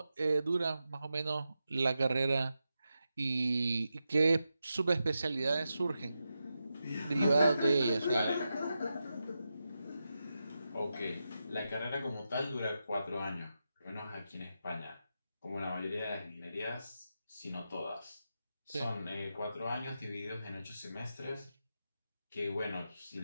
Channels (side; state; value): both; inverted; correlation -0.89